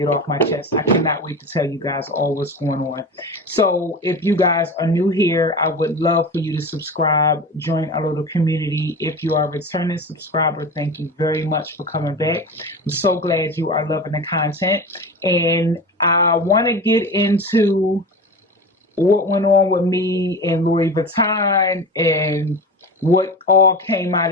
off my chest. I cannot wait to tell you guys all what's going on. So if you guys are new here, I would love for you to subscribe, join our little community. If you are a returning subscriber, thank you very much for coming back. I'm so glad you are loving the content. And I want to get into what went on with me and Louis Vuitton and what all came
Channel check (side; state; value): both; normal; correlation 0.29